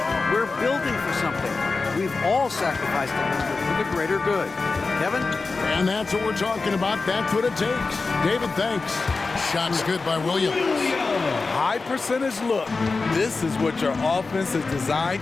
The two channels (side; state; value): right; quieter; 4.0 dB